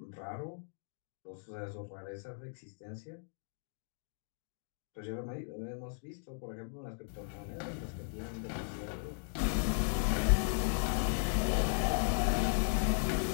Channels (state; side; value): silent; right; digital silence